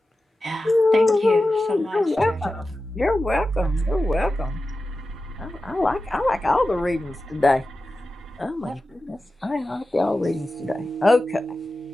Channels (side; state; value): both; normal; correlation 0.93